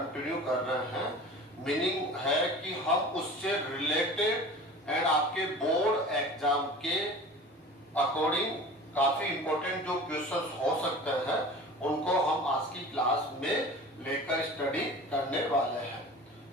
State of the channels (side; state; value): both; normal; correlation 0.39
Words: कर रहे हैं। मीनिंग है कि हम उससे रिलेटेड एंड आपके बोर्ड एग्जाम के अकॉर्डिंग काफी इंपॉर्टेंट जो क्वेश्चंस हो सकते हैं उनको हम आज की क्लास में लेकर स्टडी करने वाले हैं।